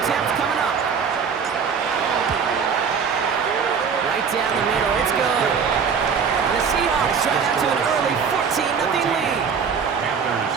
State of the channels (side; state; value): left; quieter; 6.3 dB